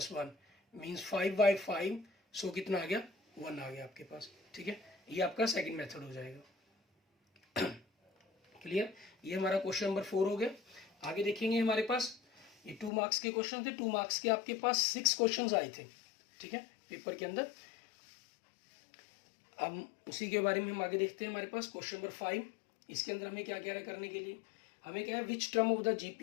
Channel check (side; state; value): right; drops out; at 12.9 s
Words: 1 मीन्स 5/5, सो कितना आ गया 1 आ गया आपके पास, ठीक है। ये आपका सेकंड मेथड हो जाएगा। क्लियर, ये हमारा क्वेश्चन नंबर 4 हो गया। आगे देखेंगे हमारे पास ये 2 मार्क्स के क्वेश्चन थे। 2 मार्क्स के आपके पास 6 क्वेश्चंस आए थे, ठीक है, पेपर के अंदर। अब उसी के बारे में हम आगे देखते हैं। हमारे पास क्वेश्चन नंबर 5, इसके अंदर हमें क्या कह रहा है करने के लिए, हमें क्या है which term of the